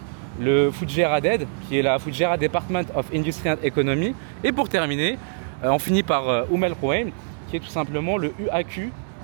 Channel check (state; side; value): silent; left; digital silence